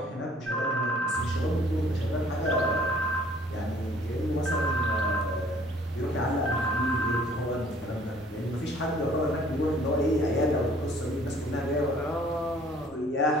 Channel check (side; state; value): both; normal; correlation 0.56